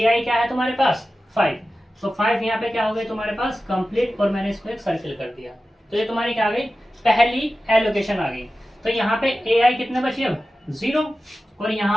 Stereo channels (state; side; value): normal; both; correlation 0.94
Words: क्या है तुम्हारे पास 5, तो 5 यहाँ पे क्या हो गई तुम्हारे पास कंप्लीट, और मैंने इसको एक सर्किल कर दिया, तो ये तुम्हारी क्या आ गई पहली एलोकेशन आ गई। तो यहाँ पे AI कितने बचे अब 0, और